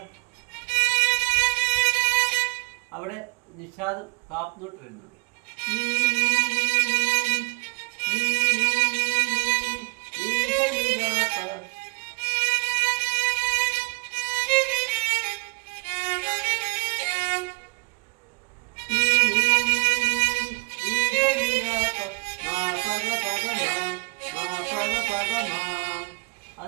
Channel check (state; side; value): quieter; left; 30.0 dB